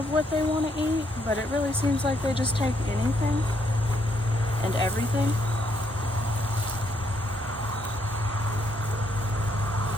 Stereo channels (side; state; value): both; normal; correlation 0.73